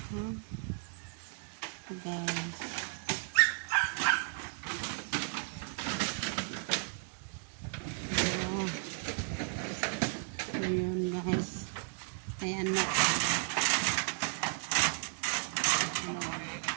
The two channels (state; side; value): silent; left; 55 dB below the other